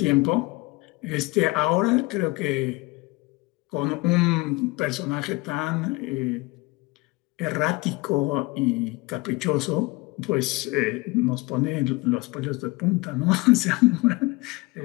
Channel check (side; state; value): right; quieter; 23.6 dB